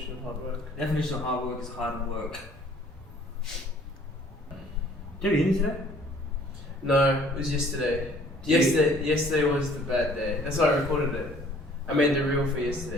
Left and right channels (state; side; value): normal; both; correlation 0.56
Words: of hard work? Definition of hard work is hard work. Did you eat today? No, it was yesterday. Yesterday was the bad day. That's why I recorded it. I made the reel for